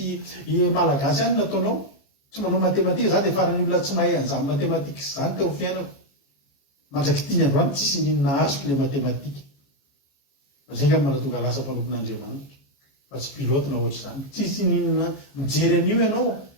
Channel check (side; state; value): right; late; 15 ms